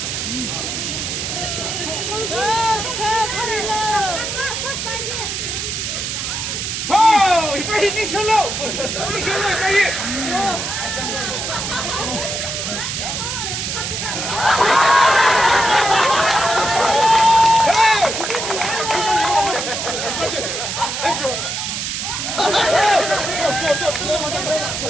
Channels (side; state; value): right; noise; hiss, 3 dB below the sound